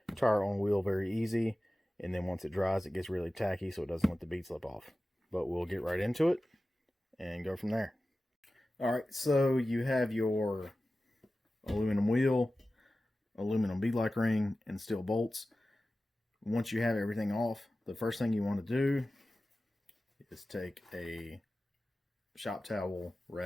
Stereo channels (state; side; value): normal; both; correlation 0.95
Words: tire on wheel very easy, and then once it dries, it gets really tacky, so it doesn't let the bead slip off. But we'll get right into it and go from there. Alright, so you have your aluminum wheel, aluminum beadlock ring, and steel bolts. Once you have everything off, the first thing you want to do is take a shop towel,